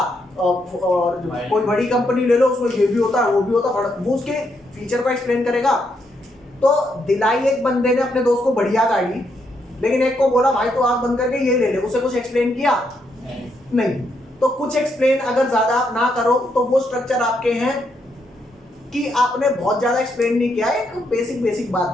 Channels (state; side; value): normal; both; correlation 0.78